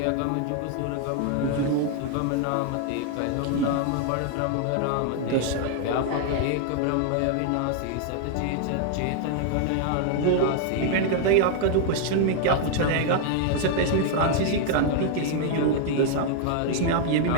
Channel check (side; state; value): both; different; correlation 0.00